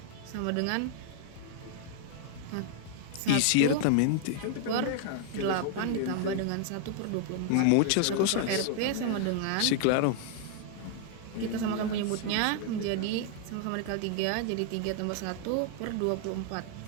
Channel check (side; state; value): both; different; correlation 0.00